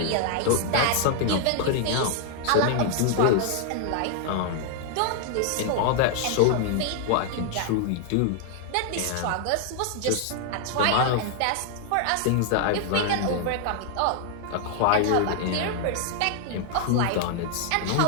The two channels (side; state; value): both; different; correlation 0.00